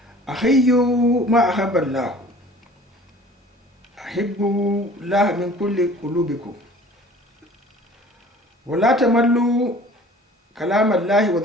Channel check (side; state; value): both; normal; correlation 0.48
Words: أحيوا ما أحب الله أحبوا الله من كل قلوبكم ولا تملوا كلام الله